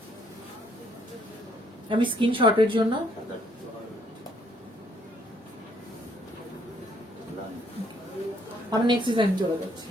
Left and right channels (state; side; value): normal; both; correlation 0.67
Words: আমি স্ক্রিনশটের জন্য আমি নেক্সট ডিজাইন চলে যাচ্ছি।